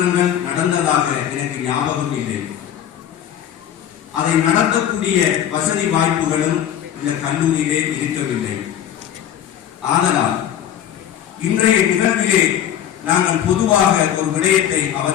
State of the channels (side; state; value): right; quieter; 10.2 dB